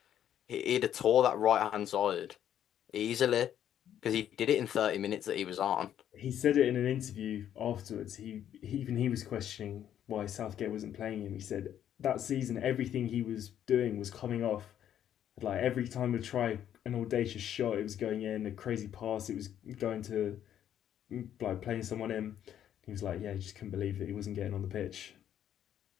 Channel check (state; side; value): quieter; right; 10.3 dB